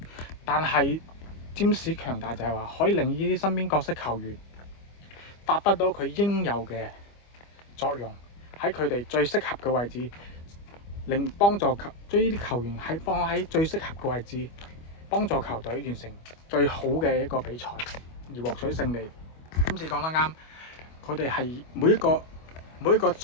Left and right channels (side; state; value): right; late; 25 ms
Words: 但係占士強大就係話，可以令呢啲身邊角色球員發揮到佢應有嘅作用，喺佢哋最適合嘅位置，幫助將呢啲球員放喺最適合嘅位置，幫助球隊完成最好嘅一個比賽而獲取勝利。今次講得啱，佢哋係每一個每一個